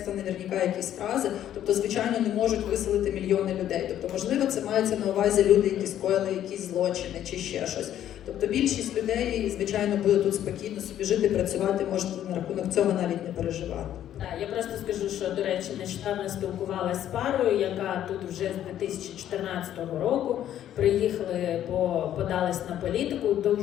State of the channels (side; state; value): right; quieter; 11.3 dB